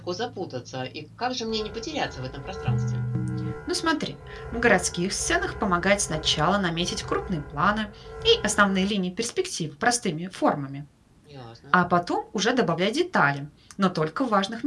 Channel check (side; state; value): both; identical; correlation 1.00